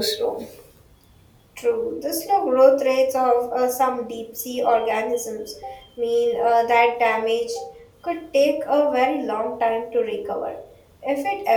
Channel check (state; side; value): identical; both; correlation 1.00